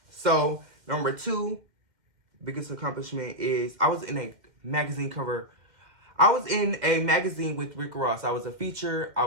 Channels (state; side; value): late; left; 2.2 ms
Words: So, number 2 biggest accomplishment is I was in a magazine cover. I was in a magazine with Rick Ross. I was a feature. I